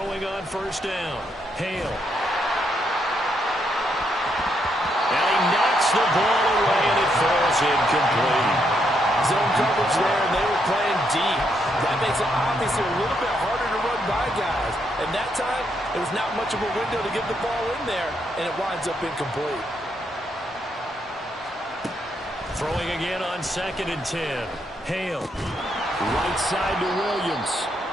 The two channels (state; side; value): normal; both; correlation 0.77